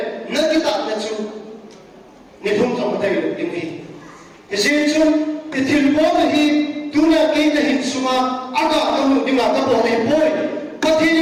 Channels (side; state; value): both; identical; correlation 1.00